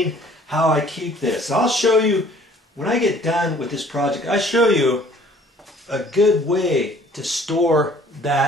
how I keep this. I'll show you, when I get done with this project, I'll show you a good way to store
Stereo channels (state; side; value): normal; both; correlation 0.55